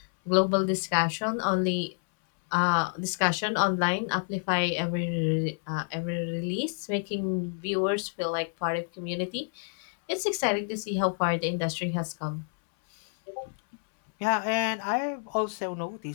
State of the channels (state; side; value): silent; right; 59 dB below the other